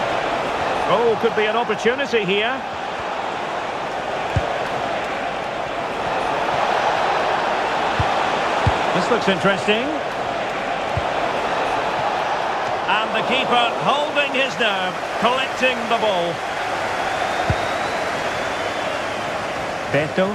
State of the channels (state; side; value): identical; both; correlation 1.00